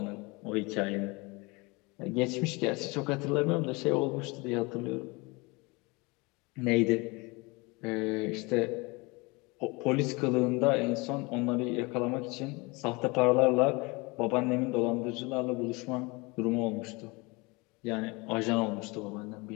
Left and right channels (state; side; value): quieter; right; 26.3 dB